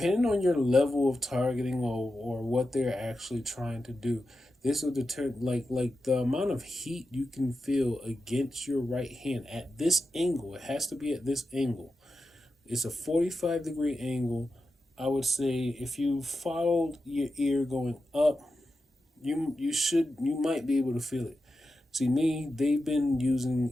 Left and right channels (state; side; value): normal; both; correlation 0.90